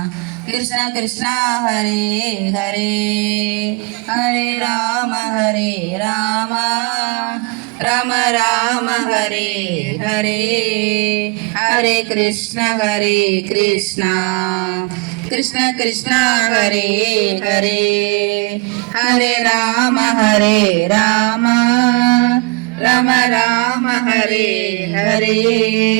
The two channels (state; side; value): quieter; left; 27.6 dB